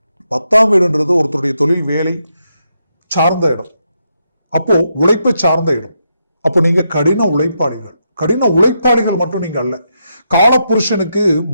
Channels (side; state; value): both; inverted; correlation -0.82